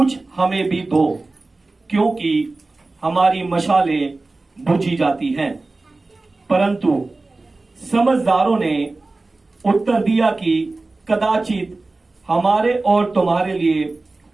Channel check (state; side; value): quieter; left; 3.3 dB